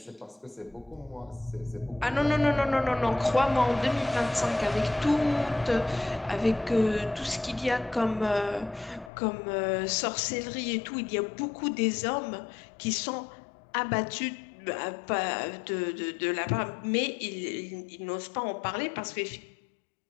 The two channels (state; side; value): drops out; right; at 9.1 s